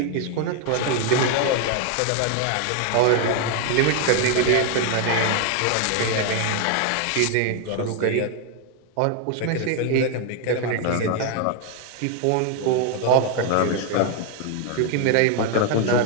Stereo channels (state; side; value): different; both; correlation 0.00